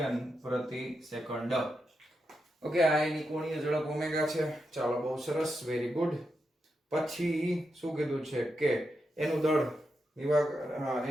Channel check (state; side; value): normal; both; correlation 0.86